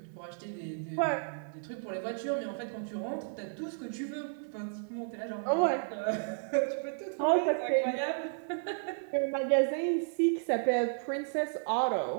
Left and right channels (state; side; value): silent; left; digital silence